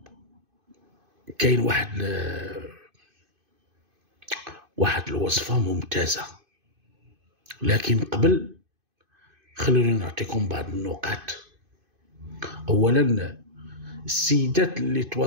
كاين واحد الوصفة ممتازة، لكن قبل خلوني نعطيكم بعض النقاط. أولا، السيدات اللي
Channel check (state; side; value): late; left; 2.5 ms